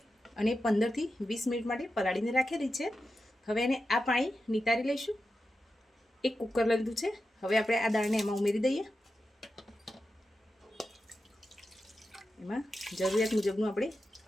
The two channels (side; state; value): both; normal; correlation 0.90